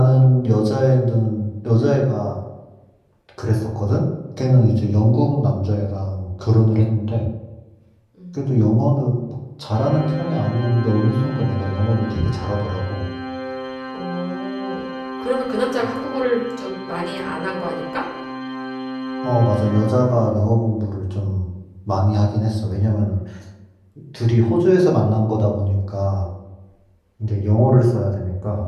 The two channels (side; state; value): both; identical; correlation 1.00